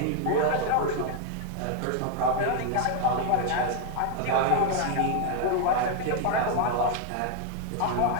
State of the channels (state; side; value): different; both; correlation 0.00